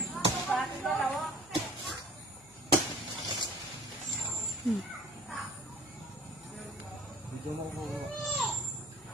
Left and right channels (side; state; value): left; noise; hum, 26 dB below the sound